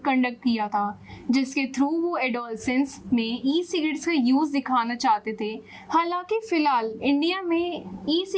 कंडक्ट किया था, जिसके थ्रू वो एडोलसेंस में ई सिगरेट्स का यूज़ दिखाना चाहते थे। हालांकि फिलहाल इंडिया में ई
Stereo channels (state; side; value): identical; both; correlation 1.00